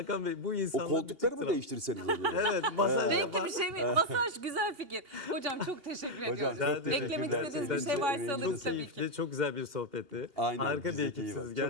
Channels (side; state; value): left; late; 2.8 ms